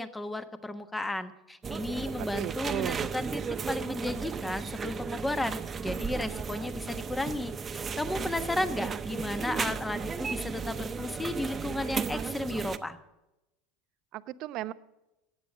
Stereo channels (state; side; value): normal; both; correlation 0.83